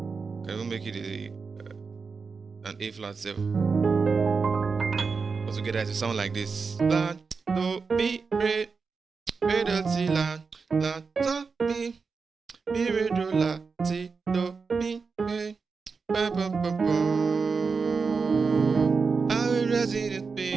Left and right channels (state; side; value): quieter; left; 4.9 dB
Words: Can even make it an A flat 7. Altogether it will sound like this. La do mi re do ti la do mi re do la ti do mi re ba ba ba ba. I will rest in the